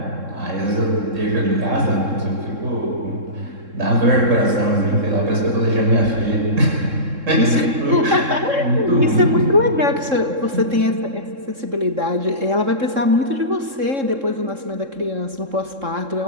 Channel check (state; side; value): late; left; 3.7 ms